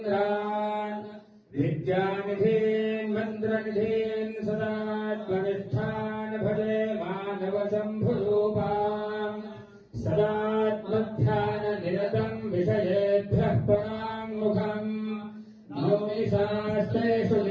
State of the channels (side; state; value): both; identical; correlation 1.00